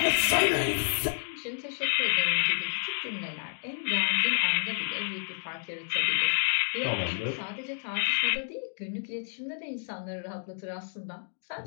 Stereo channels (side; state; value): right; silent; digital silence